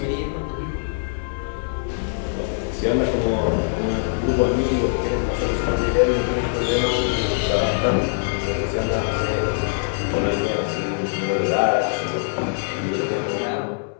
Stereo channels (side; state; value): right; silent; 64 dB below the other